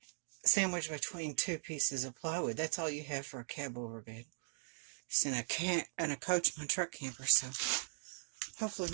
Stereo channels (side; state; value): left; silent; digital silence